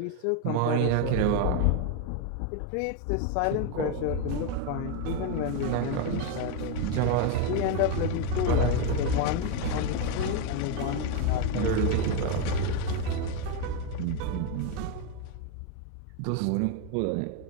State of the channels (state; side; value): different; both; correlation 0.02